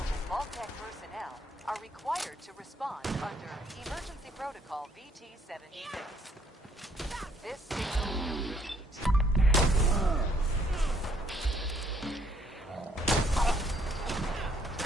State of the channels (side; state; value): both; normal; correlation 0.66